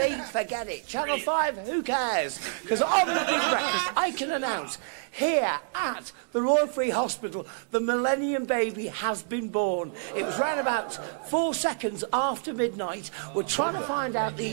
forget it. Channel 5, who cares? Because on The Big Breakfast, I can announce here at the Royal Free Hospital, the Millennium baby has been born. It was round about 4 seconds after midnight. We're trying to find out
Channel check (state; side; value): silent; left; digital silence